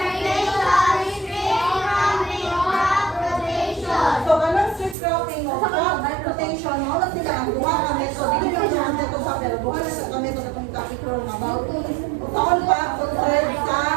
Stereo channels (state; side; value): drops out; left; at 5.0 s